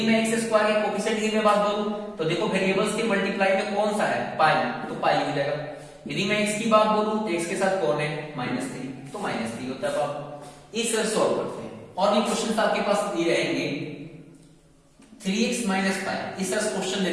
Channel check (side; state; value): both; identical; correlation 1.00